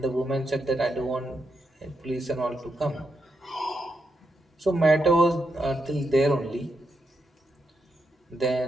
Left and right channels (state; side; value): normal; both; correlation 0.83